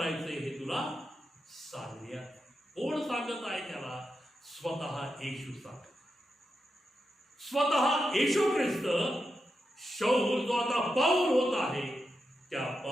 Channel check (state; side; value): normal; both; correlation 0.87